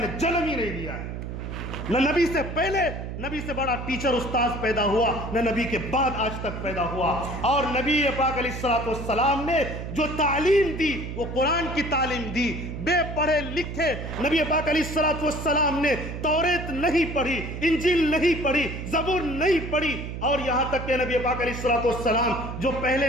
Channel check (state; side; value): noise; right; hum, 7 dB below the sound